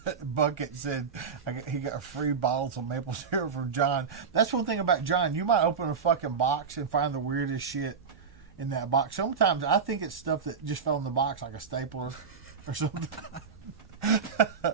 Bucket said he got free bottles of maple syrup from John. That's one thing about John. You might open a fucking box and find the weirdest shit in that box. Sometimes I think it's stuff that just fell in the box, like a stapler or something.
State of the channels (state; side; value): quieter; left; 5.9 dB